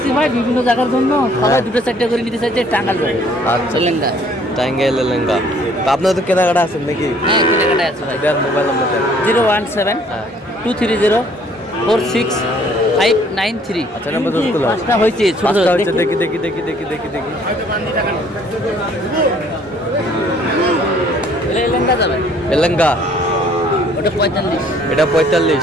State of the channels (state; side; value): normal; both; correlation 0.59